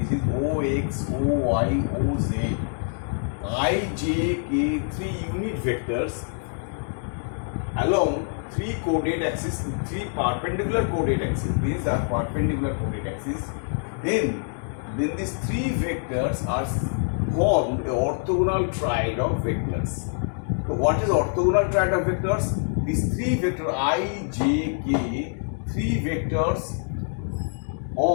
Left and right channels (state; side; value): silent; right; 61 dB below the other